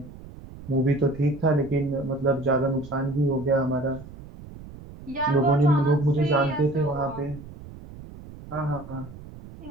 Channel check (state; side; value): noise; right; rumble, 16 dB below the sound